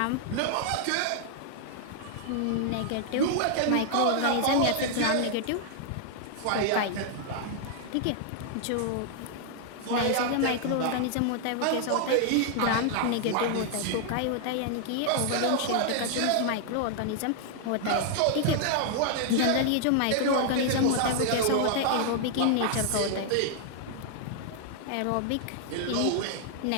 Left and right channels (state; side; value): different; both; correlation -0.01